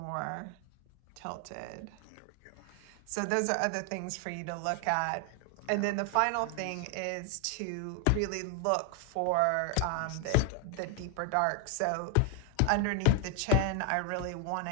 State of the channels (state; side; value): different; both; correlation 0.00